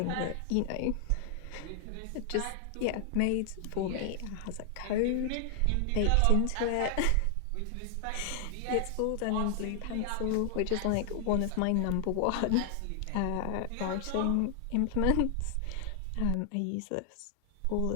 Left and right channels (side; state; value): both; different; correlation 0.00